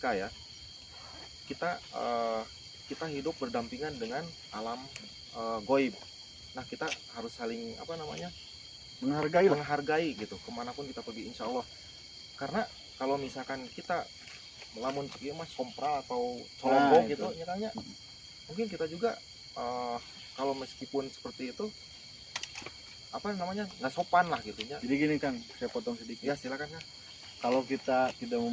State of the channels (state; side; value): identical; both; correlation 1.00